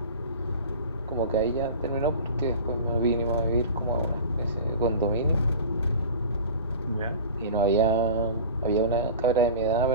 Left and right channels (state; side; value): inverted; both; correlation -0.36